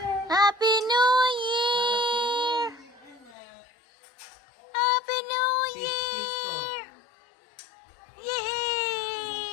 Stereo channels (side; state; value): right; drops out; at 3.4 s